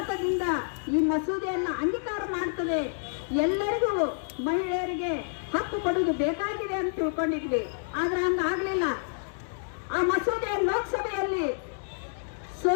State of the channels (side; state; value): right; silent; digital silence